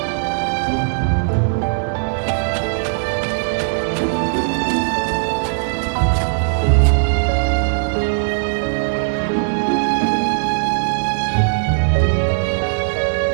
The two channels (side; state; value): left; silent; 67 dB below the other